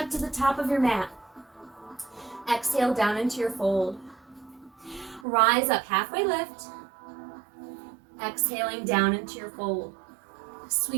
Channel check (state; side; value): drops out; left; at 5.2 s